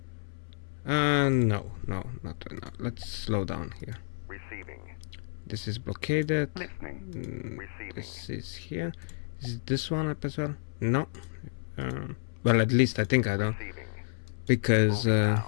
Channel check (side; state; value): right; silent; 57 dB below the other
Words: No, not right now. Let's slow down here. This is blockaded. This is here. Is this one up as well? No. Well, at least I think I don't. Because